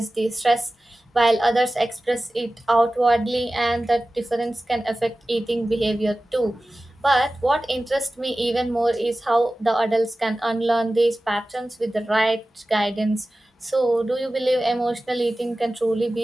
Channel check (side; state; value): both; normal; correlation 0.96